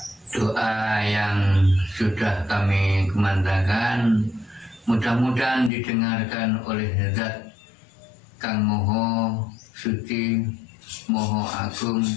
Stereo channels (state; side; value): drops out; right; at 5.7 s